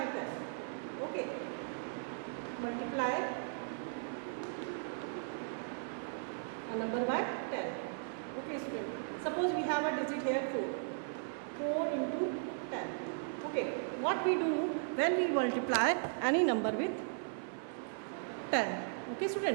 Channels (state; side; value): silent; left; 53 dB below the other